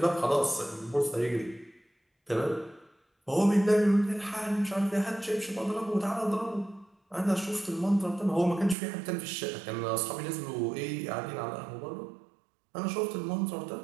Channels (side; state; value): left; drops out; at 8.8 s